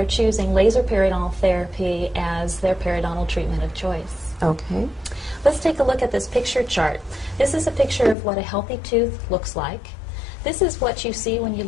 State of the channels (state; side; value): drops out; right; at 8.2 s